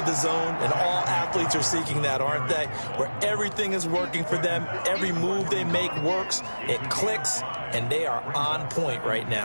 the zone, and all athletes are seeking that, aren't they? Where everything is working for them, every move they make works, it clicks, and they are on point right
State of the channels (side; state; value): both; inverted; correlation -1.00